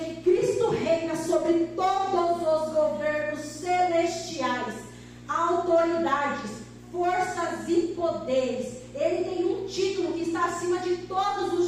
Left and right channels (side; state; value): both; identical; correlation 1.00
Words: Cristo reina sobre todos os governos celestiais, autoridades, forças e poderes. Ele tem um título que está acima de todos